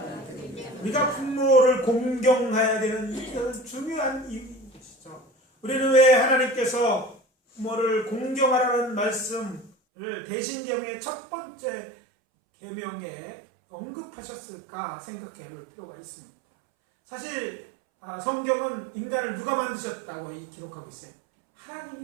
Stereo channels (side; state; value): left; drops out; at 9.7 s